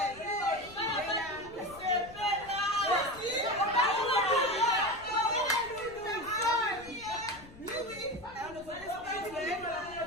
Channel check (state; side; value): noise; left; rumble, 20 dB below the sound